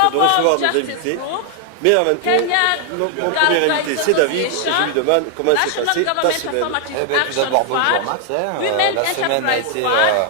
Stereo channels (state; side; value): different; both; correlation 0.00